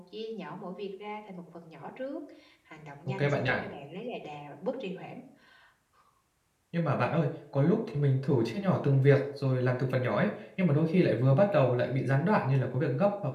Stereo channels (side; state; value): both; identical; correlation 1.00